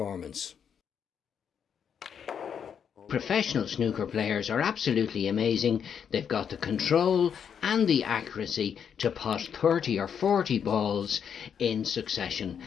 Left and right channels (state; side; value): quieter; right; 7.7 dB